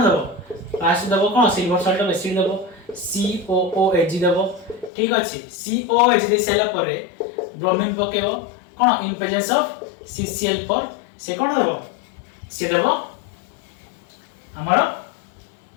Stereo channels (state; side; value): drops out; right; at 4.9 s